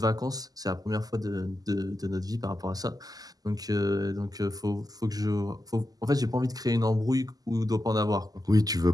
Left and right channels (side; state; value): left; late; 0.18 ms